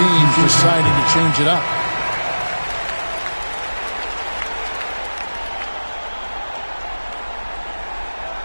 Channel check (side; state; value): both; inverted; correlation -1.00